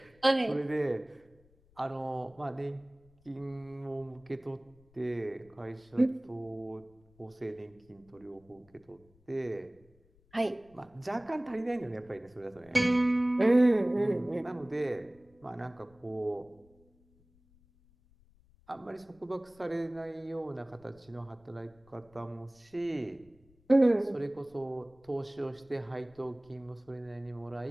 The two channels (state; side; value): noise; left; rumble, 29 dB below the sound